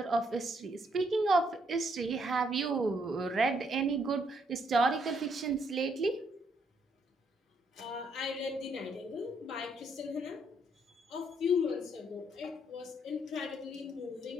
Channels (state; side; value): normal; both; correlation 0.72